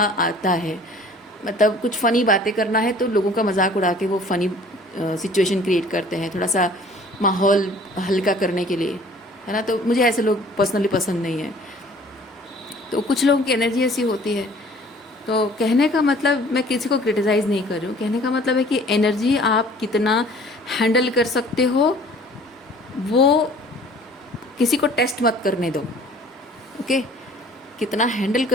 आता है। मतलब कुछ फ़नी बातें करना है तो लोगों का मजाक उड़ा के वो फ़नी सिचुएशन क्रिएट करते हैं, थोड़ा सा माहौल हल्का करने के लिए, है ना। तो मुझे ऐसे लोग पर्सनली पसंद नहीं है। तो कुछ लोगों की एनर्जी ऐसी होती है। तो कहने का मतलब, मैं किसी को क्रिटिसाइज़ नहीं कर रही हूँ, कहने का मतलब है कि एनर्जी आप कितना हैंडल कर सकते हो, वो किसी को टेस्ट मत करने दो। ओके, कितना हैंडल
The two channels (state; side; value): normal; both; correlation 0.51